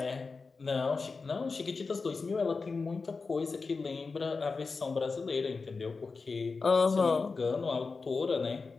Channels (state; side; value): quieter; right; 4.4 dB